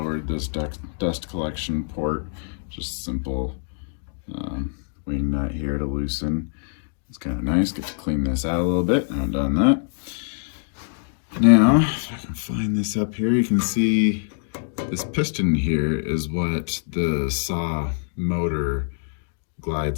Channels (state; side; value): silent; right; 62 dB below the other